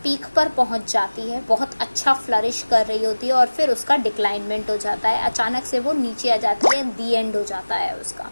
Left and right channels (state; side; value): inverted; both; correlation -1.00